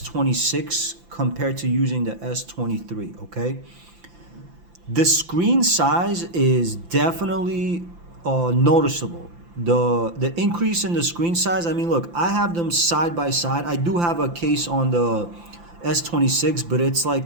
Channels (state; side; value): late; left; 5.8 ms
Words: compared to using the S23, okay? The screen size is definitely noticeable. The increase in the screen size, I mean, look, I have them side by side. I do have a case on the S26, but it's